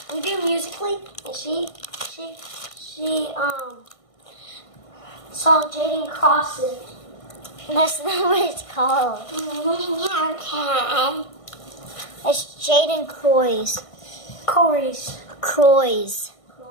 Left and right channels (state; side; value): late; right; 1.5 ms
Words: We do musically, and she saw Jaden Crossing. That's not what it's called. Okay. It's Jaden Croys.